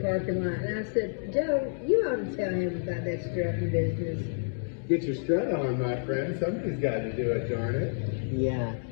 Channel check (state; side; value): silent; right; digital silence